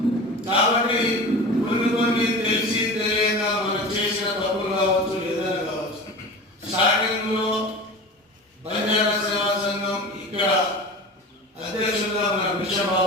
కాబట్టి కొన్ని తెలిసి తెలియక మనం చేసిన తప్పులు కావచ్చు, ఏదైనా కావచ్చు. స్టార్టింగ్ లో బంజారా సేవా సంఘం ఇక్కడ అధ్యక్షులుగా మన భిక్షం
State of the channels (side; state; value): both; normal; correlation 0.33